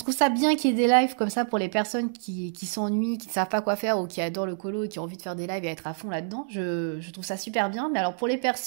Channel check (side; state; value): left; silent; digital silence